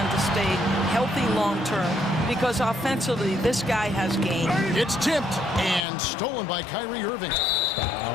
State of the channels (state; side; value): drops out; right; at 5.9 s